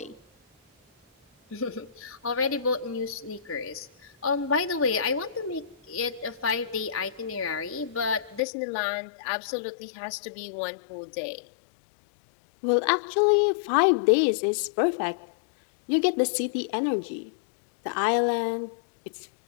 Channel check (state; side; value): drops out; right; at 8.4 s